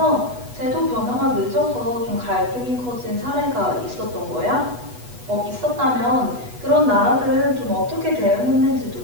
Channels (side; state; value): left; late; 8.2 ms